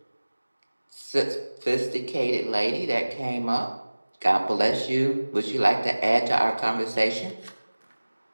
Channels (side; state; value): both; inverted; correlation -1.00